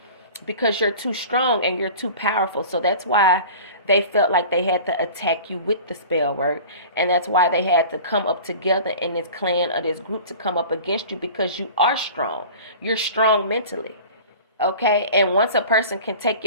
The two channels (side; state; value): both; inverted; correlation -0.40